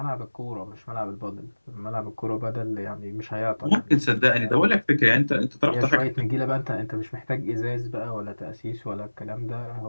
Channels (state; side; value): inverted; both; correlation -1.00